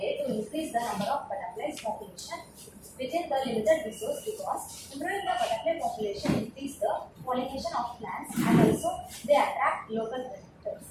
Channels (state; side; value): identical; both; correlation 1.00